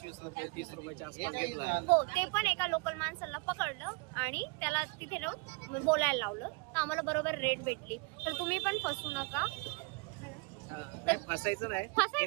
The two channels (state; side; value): quieter; left; 30.2 dB